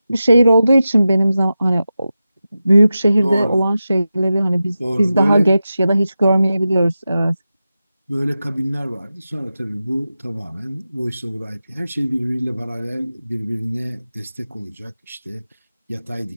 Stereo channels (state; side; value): inverted; both; correlation -0.92